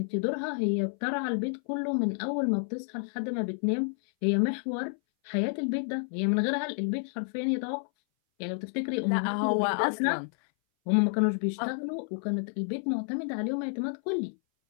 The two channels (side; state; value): right; silent; 58 dB below the other